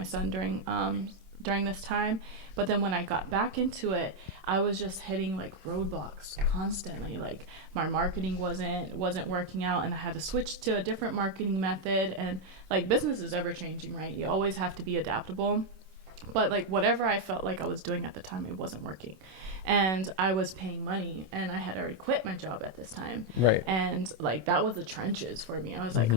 son during this time. But then when I got back into it, I was just hitting like roadblocks constantly. Like my marketing wasn't working out, and I had to switch to a different marketing method. And like business is ever changing, right? You always have to be adaptable. But like whatever I felt like I was doing at the time, it wasn't working. And I was paying money, and I had already quit my job at this time. Right. And like that was the trenches for me. I was like,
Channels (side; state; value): left; late; 26 ms